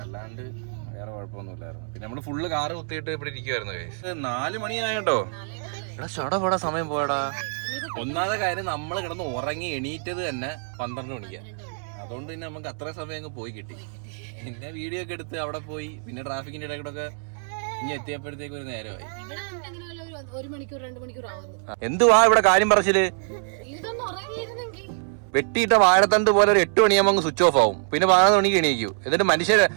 അല്ലാണ്ട് വേറെ കുഴപ്പമൊന്നുമില്ലായിരുന്നു. പിന്നെ നമ്മള് ഫുള്ള് കാറ് കുത്തിയിട്ട് ഇവിടെ ഇരിക്കുവായിരുന്നു. 4 മണിയായിട്ടോ. എടാ ചടപടാ സമയം പോയടാ. ഒന്നാമത്തെ കാര്യം, നമ്മള് കിടന്ന് ഉറങ്ങി എണീറ്റത് തന്നെ 12 മണിക്കാ. അതുകൊണ്ട് പിന്നെ നമുക്ക് അത്ര സമയം അങ്ങ് പോയി കിട്ടി. പിന്നെ വീഡിയോ ഒക്കെ എടുത്ത് അവിടെ പോയി, പിന്നെ ട്രാഫിക്കിന്റെ ഇടയ്ക്കൂടെ ഇനി എത്തിയപ്പോഴത്തേക്ക് ഒരു നേരമായി. 1 മണിക്കൂർ 2 മണിക്കൂർ ആവുന്നു. എന്തുവാ ഇവിടെ കാര്യം പറച്ചില്? വെട്ടിയിട്ട വാഴത്തണ്ട് പോലെ ഒരു 8 മണിയാകുമ്പോൾ അങ്ങ് സ്വിച്ച് ഓഫ് ആവും. പിന്നെ 11 മണിക്ക് എണീക്കൂ. എന്നിട്ട് മനുഷ്യര്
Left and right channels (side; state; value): left; silent; 62 dB below the other